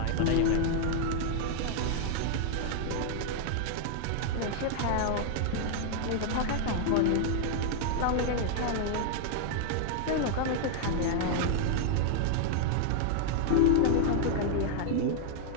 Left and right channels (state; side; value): different; both; correlation 0.00